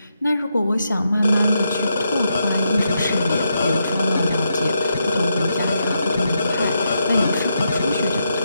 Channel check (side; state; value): both; inverted; correlation -0.82